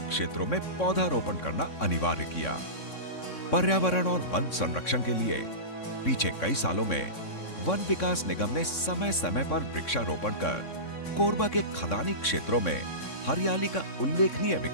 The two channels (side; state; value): right; late; 3.6 ms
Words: क्षेत्रों में पौधारोपण करना अनिवार्य किया। पर्यावरण और वन संरक्षण के लिए पीछे कई सालों में वन विकास निगम ने समय समय पर वृक्षारोपण कर कोरबा के खदानी क्षेत्रों में हरियाली का उल्लेखनीय